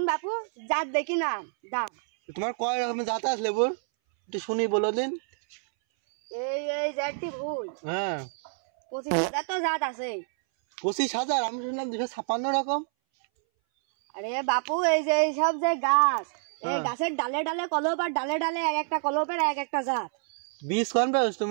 বাপু জাত দেখি না দাম তোমার কয় রকমের জাত আছে লেবুর একটু শুনি বলো দিন এই জাতটি ভুল হ্যাঁ 25,000 তো জাত আছে 25,000 আমি শুনলাম 256 রকম আরে বাপু এই যে সব যে গাছ এই গাছের ডালে ডালে কলপ আর ডালে ডালে এক একটা কলপের এক একটা জাত বীজ কোন পাওছ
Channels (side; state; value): left; silent; 60 dB below the other